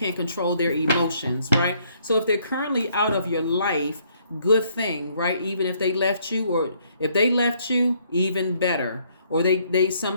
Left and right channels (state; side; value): inverted; both; correlation -0.67